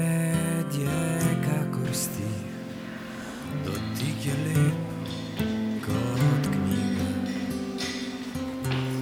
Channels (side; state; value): both; identical; correlation 1.00